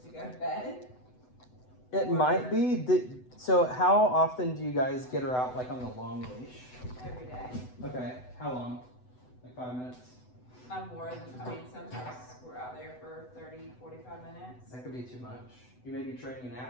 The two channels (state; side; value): late; right; 8.0 ms